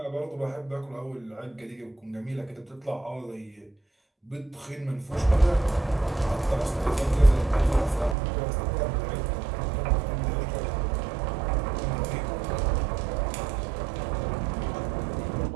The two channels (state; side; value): drops out; left; at 8.2 s